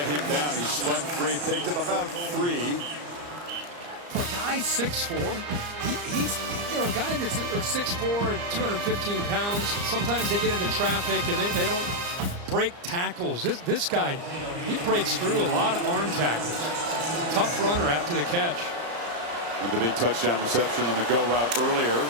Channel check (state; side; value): late; left; 34 ms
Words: him down. He spun free, picked up about 3. For a guy 6'4", he's a guy that's 6'4", 215 pounds. Sometimes they get into traffic and they don't break tackles. This guy, he breaks through a lot of arm tackles. Tough runner after the catch. With the big touchdown reception on the go route earlier.